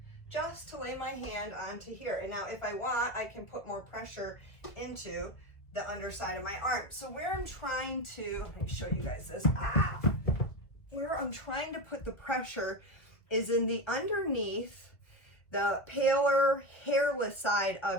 just to lay my hand onto here. And now if I want, I can put more pressure into the underside of my arm. So where I'm trying to, let me show you guys this. Where I'm trying to put the pressure is in the underneath, the paler, hairless side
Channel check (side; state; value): right; late; 1.6 ms